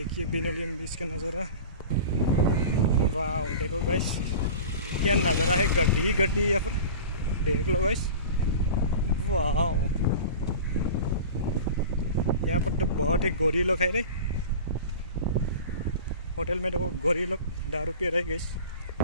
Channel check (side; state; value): both; inverted; correlation -0.36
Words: पैनोलिम बीच का नज़ारा, वाह देखो गाइस क्या नज़ारा है। गड्डी ही गड्डी है यहाँ पर, देख लो गाइस, वाह। यहाँ पर तो बहुत ही गोरी लोग है रे। होटल में देखो गोरी लोग दारू पी रहे गाइस।